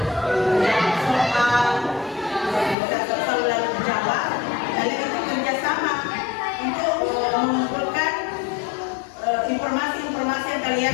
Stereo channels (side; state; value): right; drops out; at 2.8 s